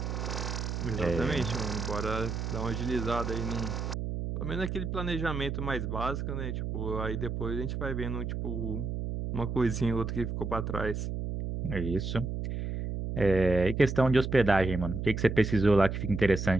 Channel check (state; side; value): noise; right; hum, 3 dB below the sound